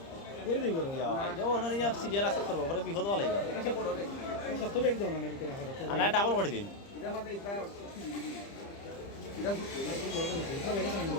করে দিই করে সিরিয়াল আছে করবো পরে বিপদ হওয়া লাগবে সত্তর এক দাও না না বিকেল আর না ডাবল করে দিন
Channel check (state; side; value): late; right; 30 ms